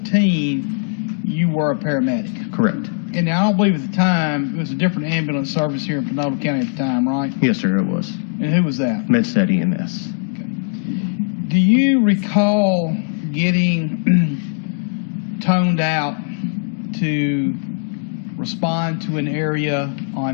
you were a paramedic. Correct. And I don't believe at the time, it was a different ambulance service here in Panola County at the time, right? Yes, sir, it was. And who was that? MedStat EMS. Okay. Do you recall getting toned out to respond to an area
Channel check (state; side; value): silent; right; digital silence